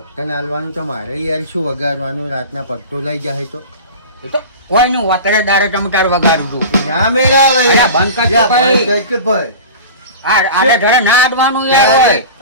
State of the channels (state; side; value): inverted; both; correlation -0.34